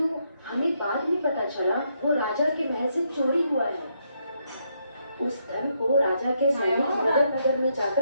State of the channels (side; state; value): both; inverted; correlation -0.77